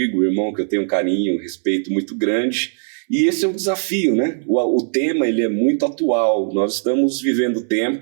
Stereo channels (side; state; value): left; silent; 65 dB below the other